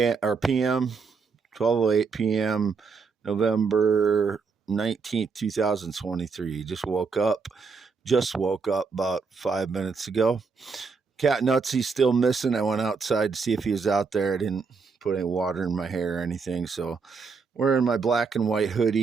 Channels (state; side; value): quieter; left; 5.0 dB